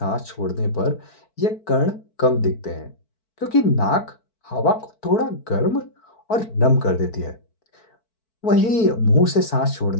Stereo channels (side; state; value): right; late; 4.5 ms